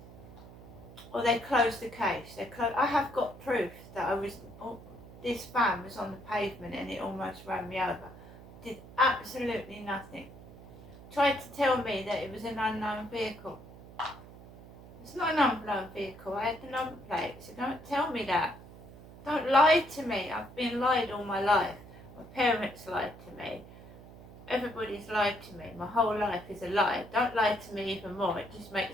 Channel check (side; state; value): right; noise; hum, 18 dB below the sound